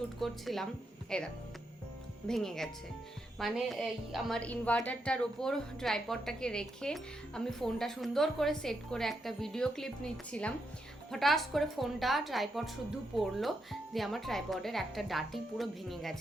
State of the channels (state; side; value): normal; both; correlation 0.82